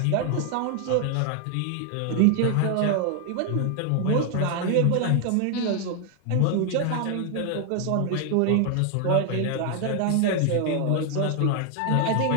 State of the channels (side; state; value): both; different; correlation 0.00